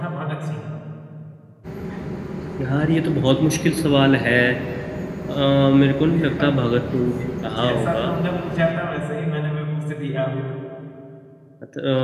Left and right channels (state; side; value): identical; both; correlation 1.00